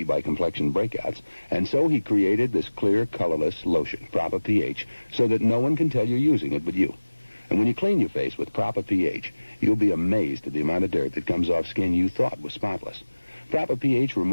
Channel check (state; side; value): inverted; both; correlation -1.00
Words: by complexion breakouts, and so he created this clear, colorless lotion, Proper pH, so that no one can tell you're using it but you. And when you clean your face with Proper pH, you'll be amazed at the amount of dirt that comes off skin you thought was spotless. Proper pH